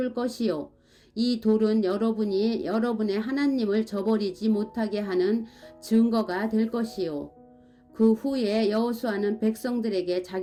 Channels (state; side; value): identical; both; correlation 1.00